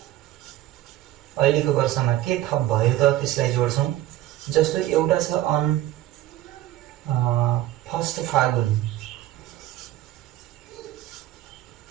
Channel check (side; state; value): left; quieter; 14.3 dB